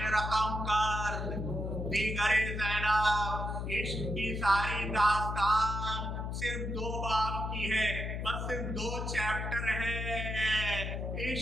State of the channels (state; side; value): noise; left; hum, 3 dB below the sound